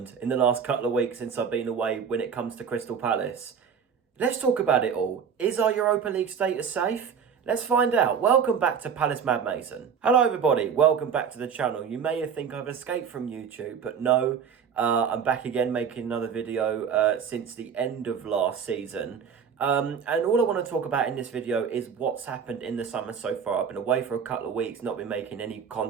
in the last couple of weeks since I've been away when it comes to Crystal Palace. Let's talk about it all. Is our Europa League status safe? Let's find out. Welcome back to Palace Mad Mason. Hello everybody, welcome back to the channel. You may think I've escaped from YouTube, but no, I'm back again making another video since the end of last season. And all I want to talk about in this video is what's happened in the summer so far. I've been away for a couple of weeks, not been making any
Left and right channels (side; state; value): left; quieter; 7.0 dB